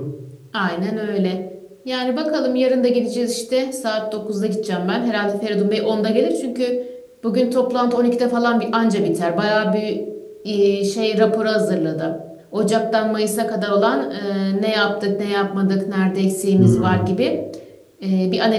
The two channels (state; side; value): identical; both; correlation 1.00